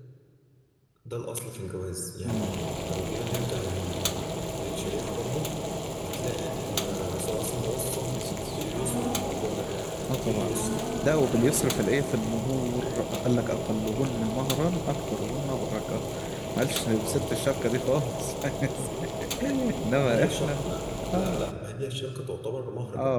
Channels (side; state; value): both; identical; correlation 1.00